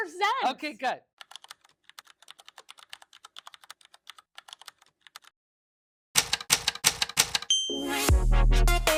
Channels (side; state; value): both; identical; correlation 1.00